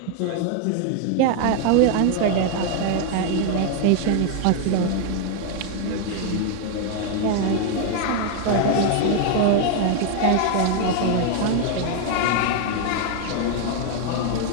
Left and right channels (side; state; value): both; different; correlation 0.00